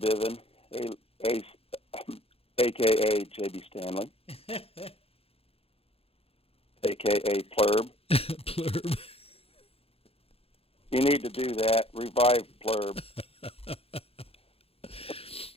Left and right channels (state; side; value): late; right; 0.28 ms